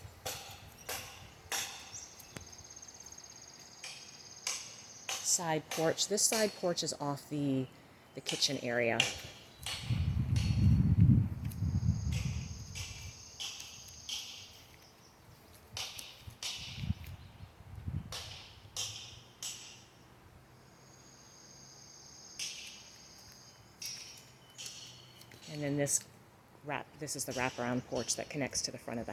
Side porch. This side porch is off the kitchen area. And then this is the wraparound porch that connects to the front of the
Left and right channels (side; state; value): both; identical; correlation 1.00